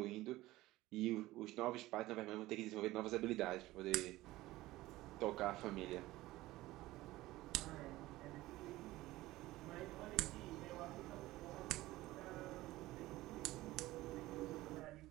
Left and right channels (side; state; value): left; quieter; 17.6 dB